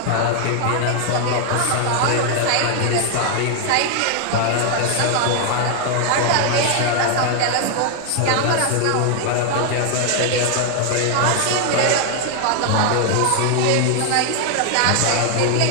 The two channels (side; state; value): both; different; correlation 0.00